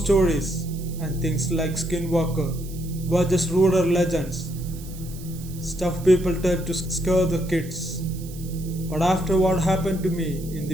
stories and things like Skinwalker were just rural legends, stuff people tell to scare the kids. But after what happened to me in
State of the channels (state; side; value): noise; right; hiss, 18 dB below the sound